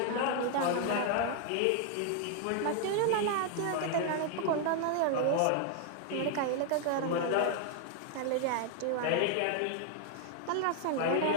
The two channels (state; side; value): different; both; correlation 0.00